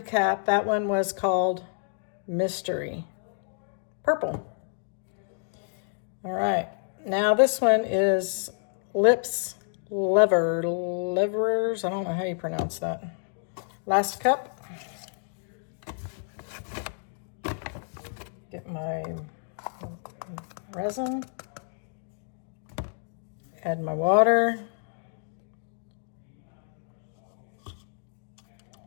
that one was called Mystery Purple. All right, now this one is Lips Livers. I don't know how you pronounce that. Last cup. Get my resin. Add my water.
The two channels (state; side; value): silent; right; digital silence